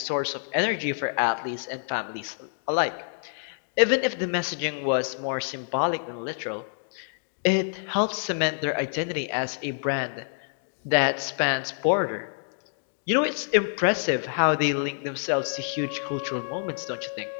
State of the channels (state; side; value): silent; right; digital silence